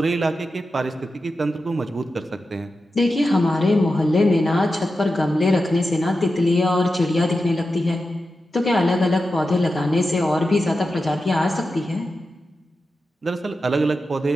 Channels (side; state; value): both; normal; correlation 0.91